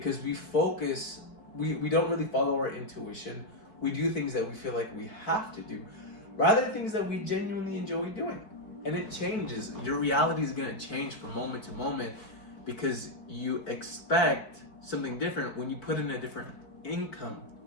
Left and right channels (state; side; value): late; right; 4.6 ms